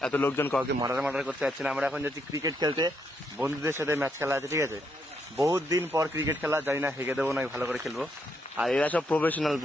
এত লোকজন কাউকে মার্ডার করতে যাচ্ছে না। আমরা এখন যাচ্ছি ক্রিকেট খেলতে, বন্ধুদের সাথে ম্যাচ খেলা আছে, ঠিক আছে। বহুত দিন পর ক্রিকেট খেলা, জানি না হেগে দেবো না ভালো করে খেলবো। আর এরা সব প্রফেশনাল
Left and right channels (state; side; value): normal; both; correlation 0.77